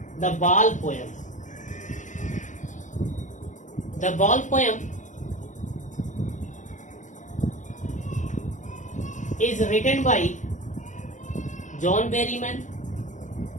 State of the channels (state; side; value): late; right; 0.36 ms